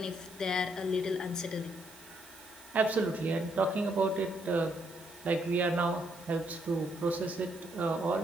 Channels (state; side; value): noise; right; hiss, 21 dB below the sound